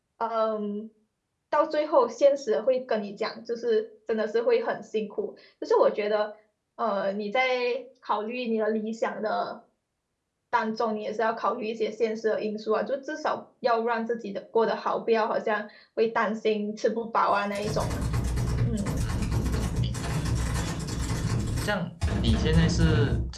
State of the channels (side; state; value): both; identical; correlation 1.00